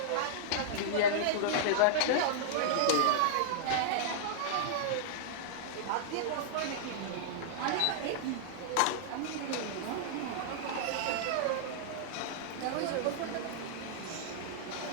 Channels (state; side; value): different; both; correlation -0.02